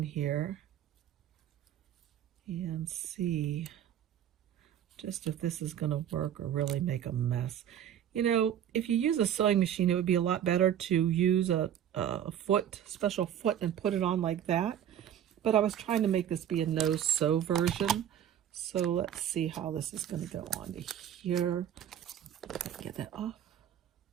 here and see just if this is going to work or really make a mess. You know, if you use a sewing machine, it would be a lot better to use a special foot and put it on like that. But I was trying to make this be a no-sew version. So let's see how this is going to go on to here. Get that off.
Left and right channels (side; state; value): left; quieter; 10.1 dB